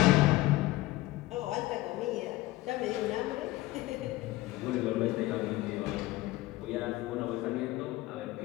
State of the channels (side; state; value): right; quieter; 18.0 dB